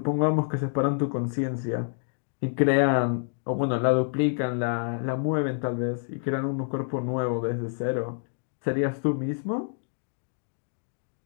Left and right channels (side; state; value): right; silent; digital silence